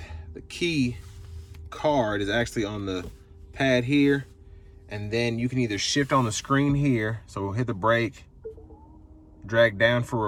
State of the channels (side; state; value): both; identical; correlation 1.00